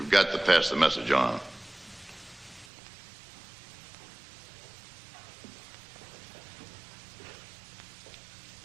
got to pass the message on.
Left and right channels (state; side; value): drops out; left; at 2.7 s